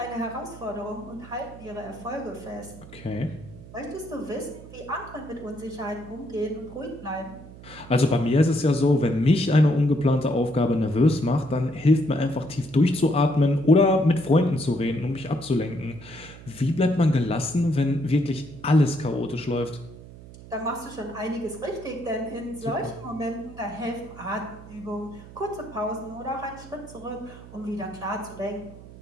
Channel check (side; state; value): right; noise; hum, 17 dB below the sound